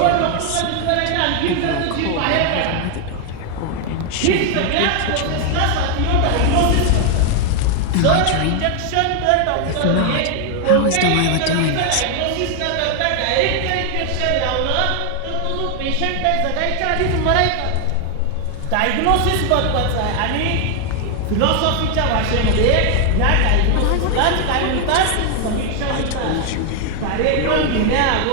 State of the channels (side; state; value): both; different; correlation 0.00